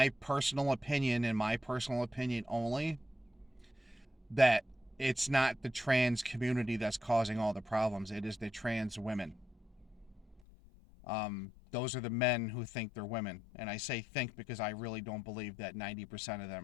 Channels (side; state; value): right; drops out; at 10.4 s